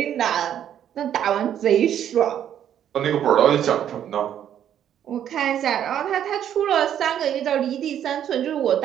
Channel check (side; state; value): left; quieter; 10.1 dB